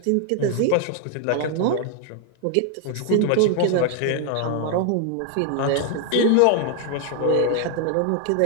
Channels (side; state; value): both; different; correlation 0.00